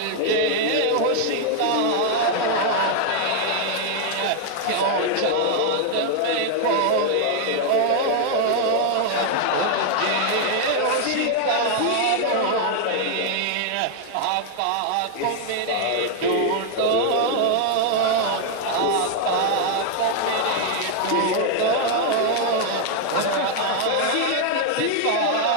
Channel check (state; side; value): different; both; correlation 0.00